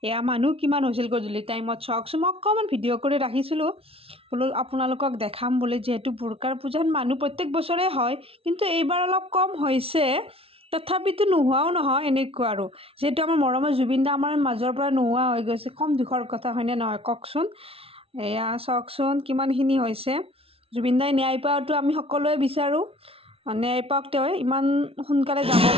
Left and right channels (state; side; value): late; left; 0.27 ms